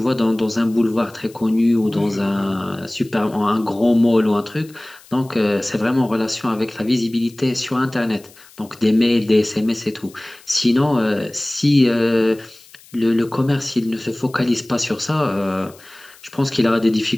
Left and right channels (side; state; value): left; noise; hiss, 25 dB below the sound